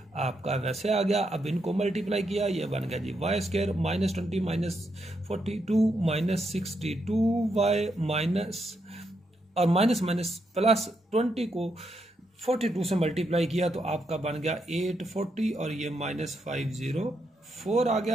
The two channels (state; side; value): normal; both; correlation 0.80